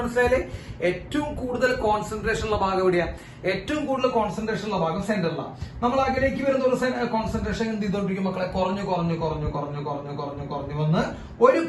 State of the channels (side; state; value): both; identical; correlation 1.00